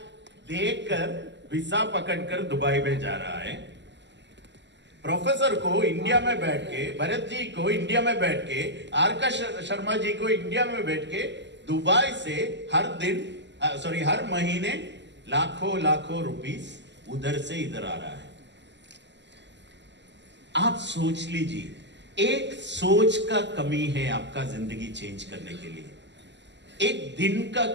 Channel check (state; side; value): late; left; 0.52 ms